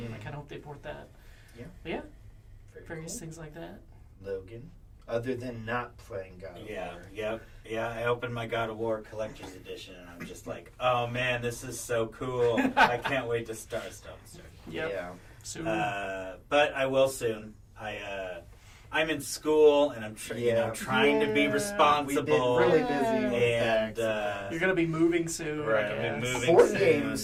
I kind of hope they port that. Yeah. But yeah, Very various cool. things like that. Logan, other than not playing God of War. Yeah. I opened my God of War Collector's Edition, and I'm just like, oh man, this is so cool. I can't wait to start. Yep. Yeah. Soon. But I will soon. I'm in school, and I'm trying to be responsible. We've been really busy. And You're going to be moving soon. Right, I I'll be guess. moving Board soon,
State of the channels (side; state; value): both; identical; correlation 1.00